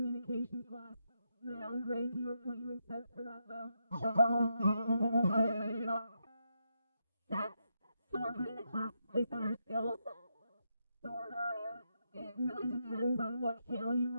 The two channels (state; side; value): inverted; both; correlation -0.83